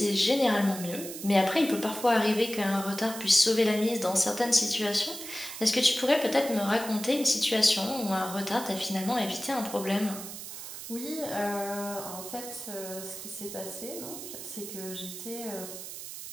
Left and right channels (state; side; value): noise; right; hiss, 10 dB below the sound